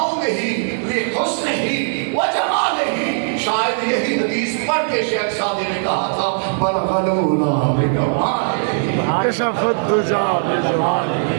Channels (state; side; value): silent; left; digital silence